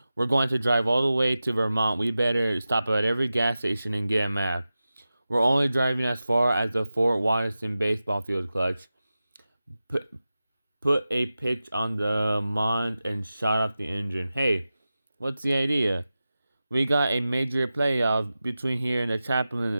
We're going to drive all the way to Vermont. We better stop at every gas station and get a map. We're only driving as far as the Fort Watson baseball field, Clutch. Put a pitch on the Mont and shut off the engine. Hey, what's the idea? We got a major playoff between here and the chaplain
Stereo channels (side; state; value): both; inverted; correlation -0.94